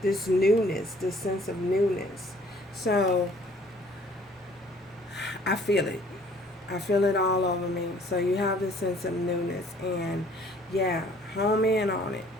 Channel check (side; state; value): both; normal; correlation 0.57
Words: newness, this sense of newness. So I feel it. I feel it all over me. So you have this sense of newness, and yeah, home in on it.